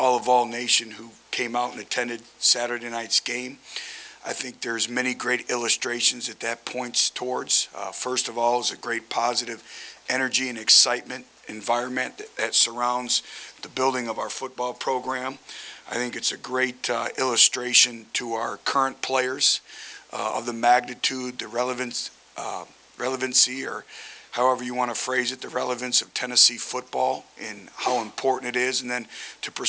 Nation who came out and attended Saturday night's game. I think there's many great illustrations that points towards. First of all, is a great positive energy and excitement environment that surrounds the building of our football program. I think it's a great illustration to our current players of the magnitude, the relevancy, or however you want to phrase it, the relevance of Tennessee football and how important it is. And then to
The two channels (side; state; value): both; identical; correlation 1.00